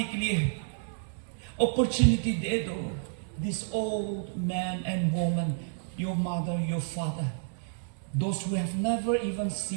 के लिए अपॉर्चुनिटी दे दो. This old man and woman, your mother, your father, those who have never even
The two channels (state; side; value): silent; left; 58 dB below the other